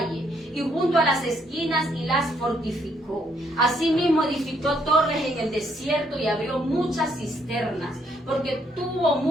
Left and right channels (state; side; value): normal; both; correlation 0.71